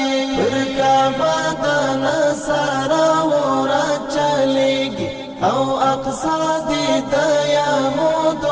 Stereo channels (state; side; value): identical; both; correlation 1.00